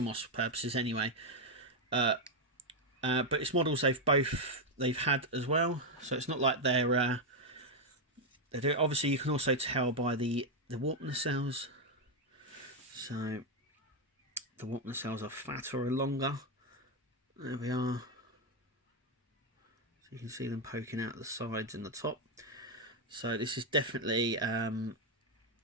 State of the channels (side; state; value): both; normal; correlation 0.03